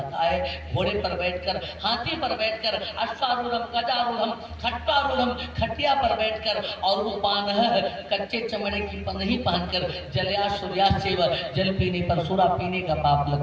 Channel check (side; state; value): both; identical; correlation 1.00